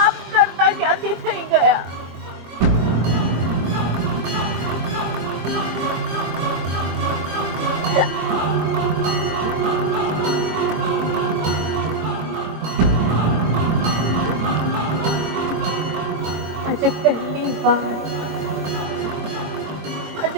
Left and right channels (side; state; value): left; late; 23 ms